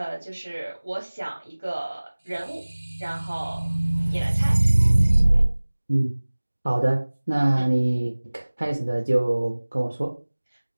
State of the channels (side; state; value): both; inverted; correlation -1.00